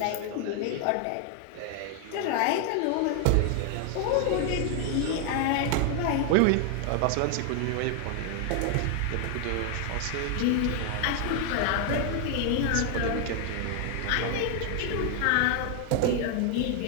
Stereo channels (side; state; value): both; different; correlation 0.00